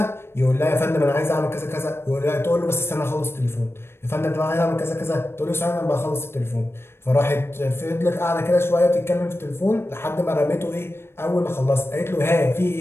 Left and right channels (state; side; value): late; right; 0.12 ms